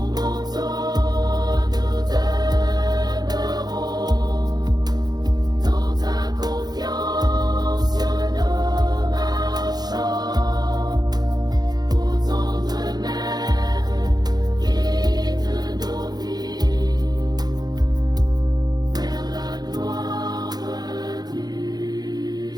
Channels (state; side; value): late; left; 0.19 ms